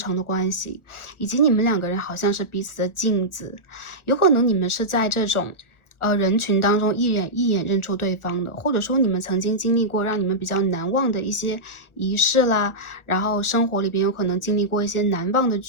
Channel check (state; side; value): late; right; 1.4 ms